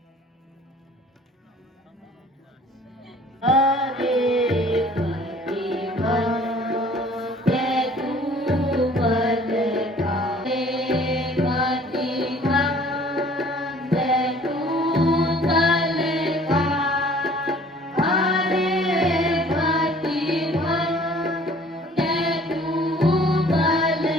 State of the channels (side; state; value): both; normal; correlation 0.53